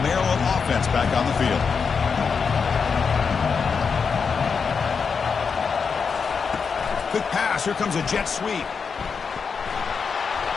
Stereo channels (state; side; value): quieter; right; 5.7 dB